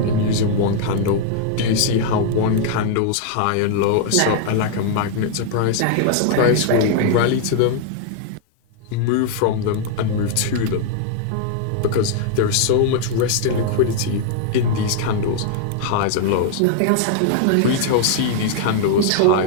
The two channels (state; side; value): different; both; correlation 0.00